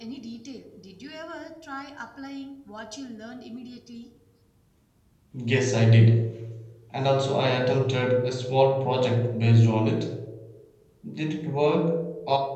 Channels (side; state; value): both; identical; correlation 1.00